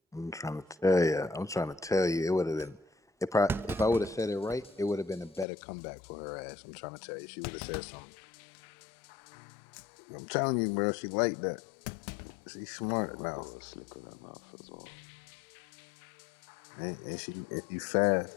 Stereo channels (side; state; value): right; drops out; at 5.5 s